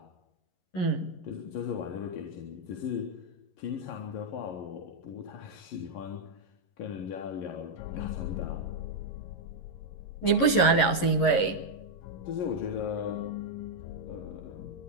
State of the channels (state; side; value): late; right; 11 ms